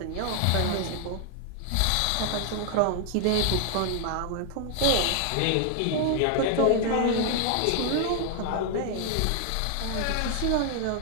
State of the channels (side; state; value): both; different; correlation 0.00